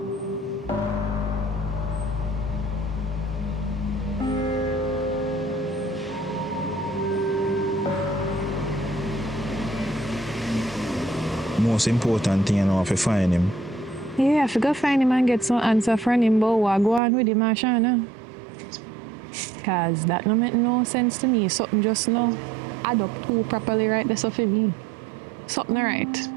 Most important thing, you know, if you find him. Yeah, if you go find him and get some answer from him about what go on with him, Ashana. Cause that no make no sense to me. Something just no add up too properly right there so for me. Something right.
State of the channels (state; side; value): drops out; left; at 17.0 s